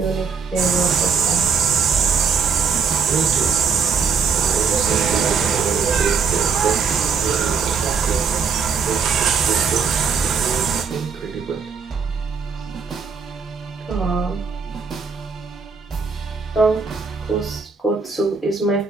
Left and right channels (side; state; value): left; quieter; 5.7 dB